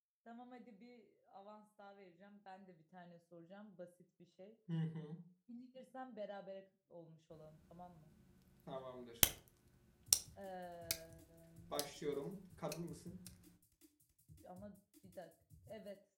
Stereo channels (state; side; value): identical; both; correlation 1.00